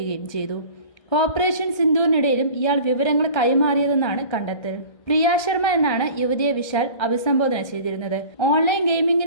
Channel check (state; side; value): late; right; 1.6 ms